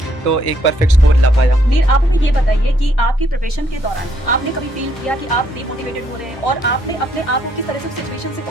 तो एक परफेक्ट स्कोर ला पाया। नीर, आप हमें ये बताइए कि आपकी प्रिपरेशन के दौरान आपने कभी फील किया कि आप डिमोटिवेटेड हो रहे हैं और आपने अपने आप को किस तरह से सिचुएशन से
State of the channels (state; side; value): normal; both; correlation 0.71